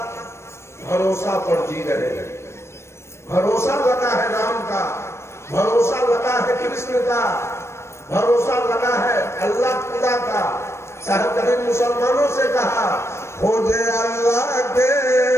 भरोसा पर जी रहे हैं। भरोसा लगा है राम का, भरोसा लगा है कृष्ण का, भरोसा लगा है अल्लाह खुदा का। साहब कभी मुसलमानों से कहा, खोजे अल्लाह के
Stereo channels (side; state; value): right; late; 0.13 ms